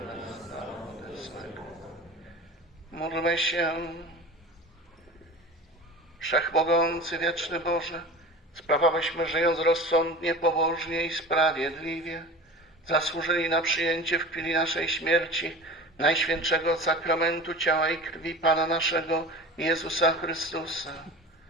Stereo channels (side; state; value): both; normal; correlation 0.36